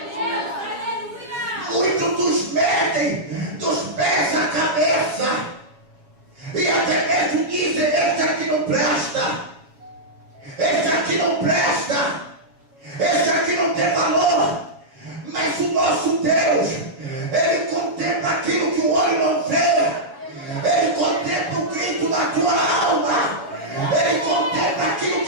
Muitos nos medem dos pés à cabeça, e até mesmo dizem: esse aqui não presta, esse aqui não presta, esse aqui não tem valor. Mas o nosso Deus, ele contempla aquilo que o olho não vê, ele contempla o grito da tua alma, ele contempla aquilo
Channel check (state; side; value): late; left; 7.3 ms